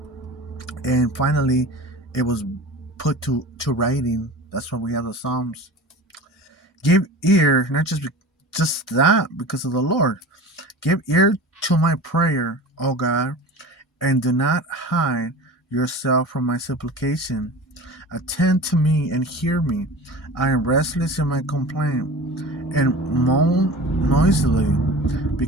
and finally it was put to writing. That's why we have the Psalms. Give ear, not just that, because of the Lord. Give ear to my prayer, O God, and do not hide yourself from my supplication. Attend to me and hear me. I am restless in my complaint, and moan noisily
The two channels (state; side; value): normal; both; correlation 0.36